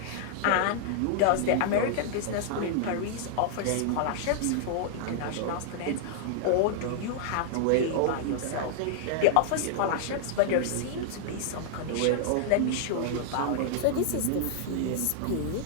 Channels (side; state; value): both; different; correlation -0.01